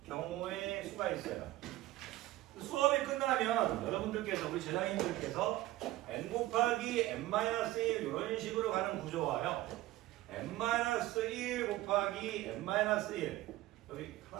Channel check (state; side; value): quieter; left; 16.6 dB